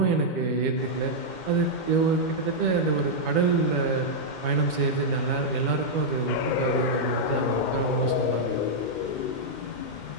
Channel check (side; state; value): right; late; 2.1 ms